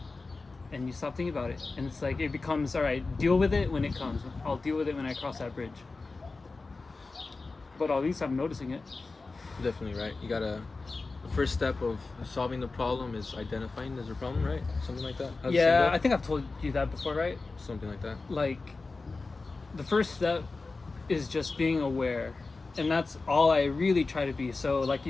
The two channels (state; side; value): quieter; right; 3.8 dB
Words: And you stop thinking about it, and it's like, it becomes, all right, deal with it when it comes. I'll deal with it when I cross that bridge. But at least I'm noticing it. Definitely, right? You gotta, the first step of solving the problem is identifying there's a problem, right? Something like that? Yeah, I think I've told you that before, right? Something like that. Like, the first step is just being aware, and that's all I really try to be. So like you